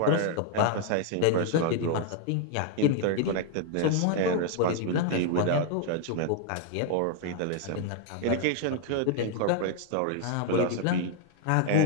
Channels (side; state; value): both; different; correlation 0.00